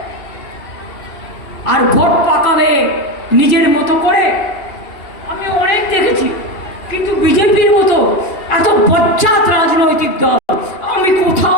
আর ভোট পাকাবে নিজের মতো করে। আমি অনেক দেখেছি, কিন্তু বিজেপির মতো এত বজ্জাত রাজনৈতিক দল আমি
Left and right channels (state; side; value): late; right; 2.8 ms